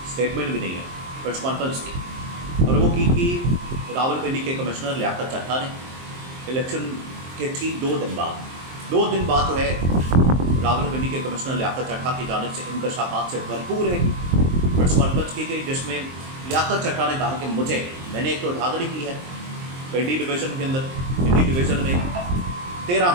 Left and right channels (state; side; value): late; left; 23 ms